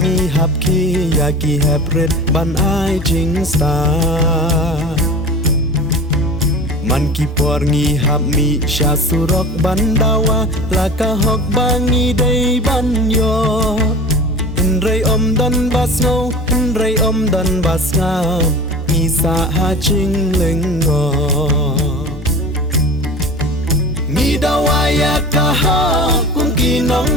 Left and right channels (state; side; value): normal; both; correlation 0.36